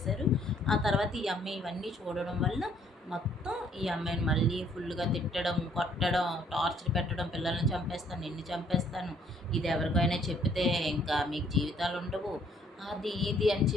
ఆ తర్వాత ఈ అమ్మాయి ఇవన్నీ చూడడం వల్ల మొత్తం ఈ అమ్మాయిని మళ్ళీ ఫుల్‌గా తిట్టడం, కొట్టడం, టార్చర్ పెట్టడం, పిల్లల్ని చంపేస్తాను, నిన్ను చంపేస్తాను, ఇది ఎవరికైనా చెప్తే ఇంకా మీకు జీవితాలుండవు, అది ఇది అని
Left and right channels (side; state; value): both; normal; correlation 0.63